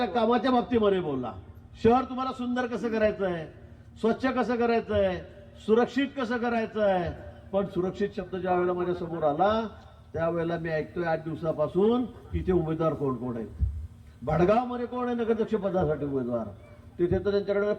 कामाच्या बाबतीमध्ये बोलला. शहर तुम्हाला सुंदर कसं करायचं आहे, स्वच्छ कसं करायचं आहे, सुरक्षित कसं करायचं आहे. पण सुरक्षित शब्द ज्या वेळेला माझ्या समोर आला त्यावेळेला मी ऐकतोय 8 दिवसापासून इथे उमेदवार कोण कोण आहेत. भडगावमध्ये कोण आहे नगराध्यक्ष पदासाठी उमेदवार, तिथे तर त्यांच्याकडे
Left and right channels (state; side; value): identical; both; correlation 1.00